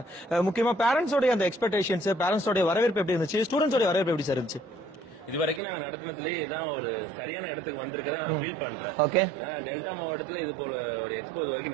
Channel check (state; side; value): drops out; left; at 5.6 s